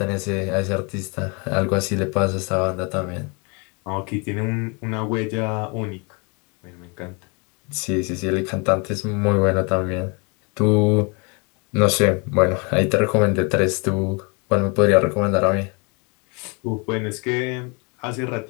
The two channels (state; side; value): quieter; right; 32.2 dB